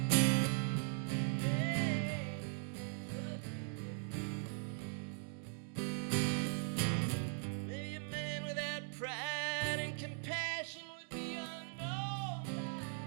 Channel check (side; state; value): left; silent; 51 dB below the other